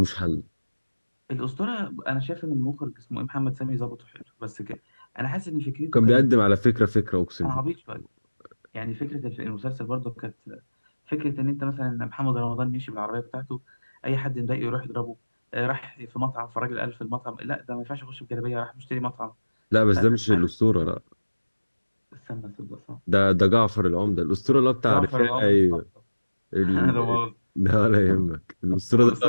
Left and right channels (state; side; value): inverted; both; correlation -1.00